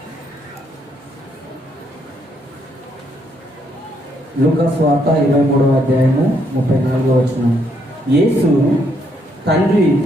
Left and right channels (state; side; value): normal; both; correlation 0.73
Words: లూకా సువార్త 23వ అధ్యాయము 34వ వచనం. యేసు, తండ్రి,